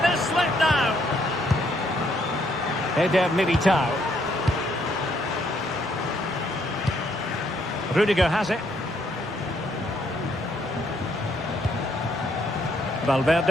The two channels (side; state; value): both; normal; correlation 0.71